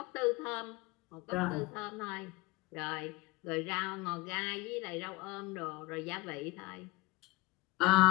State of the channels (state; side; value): quieter; right; 22.1 dB